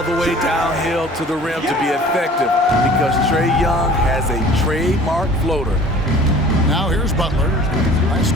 the way downhill to the rim to be effective because Trae Young has a trademark floater. Now here's Butler. Last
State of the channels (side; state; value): both; normal; correlation 0.47